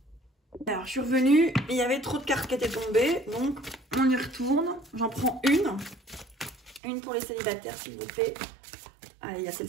Alors, je suis revenue, il y avait trop de cartes qui étaient tombées, donc on y retourne. J'en prends une. Une pour les célibataires, s'il vous plaît. Allez, il y a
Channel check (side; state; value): left; drops out; at 6.8 s